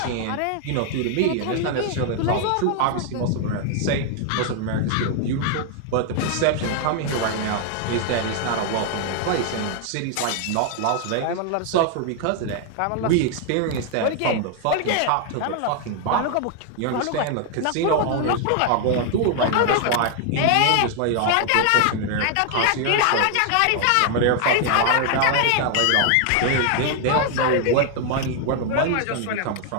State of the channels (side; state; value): both; different; correlation 0.00